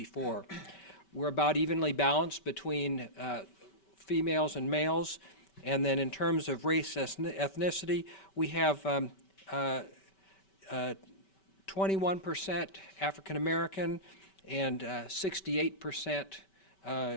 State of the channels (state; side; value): late; right; 5.2 ms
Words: We're about evenly balanced between females and males. And then in terms of race ethnicity, we have 21% African American and 68%